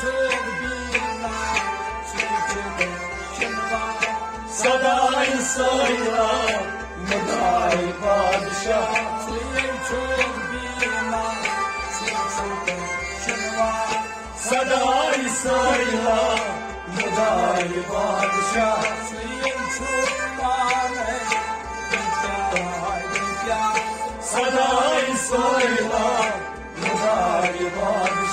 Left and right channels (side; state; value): both; identical; correlation 1.00